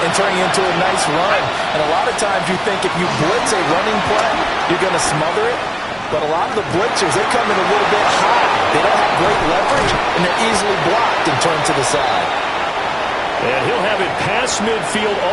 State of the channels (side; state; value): both; identical; correlation 1.00